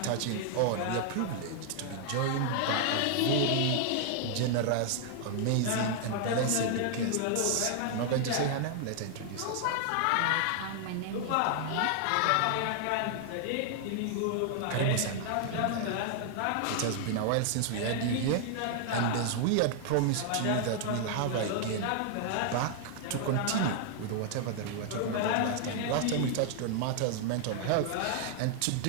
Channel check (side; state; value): both; different; correlation 0.00